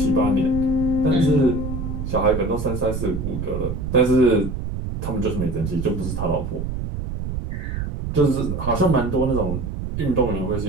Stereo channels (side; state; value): right; noise; rumble, 5 dB below the sound